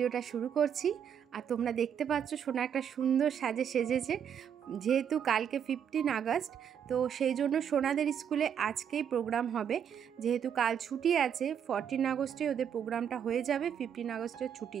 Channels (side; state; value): left; quieter; 8.4 dB